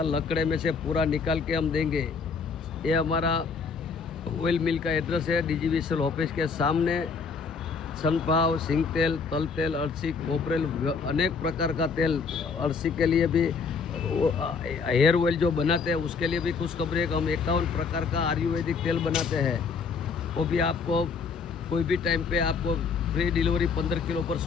लकड़े में से पूरा निकाल के हम देंगे। ये हमारा ऑयल मिल का एड्रेस है, डीजीवीसीएल ऑफिस के सामने। सनफ्लावर, सिंग तेल, तल तेल, अरसी, कोपरेल, अनेक प्रकार का तेल, अरसी के लिए भी, हेयर ऑयल जो बनाते हैं उसके लिए भी खुशखबरी है कि हम 51 प्रकार का आयुर्वेदिक तेल बनाते हैं। वो भी आपको कोई भी टाइम पे आपको फ्री डिलीवरी 15 किलो पर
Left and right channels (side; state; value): right; quieter; 5.2 dB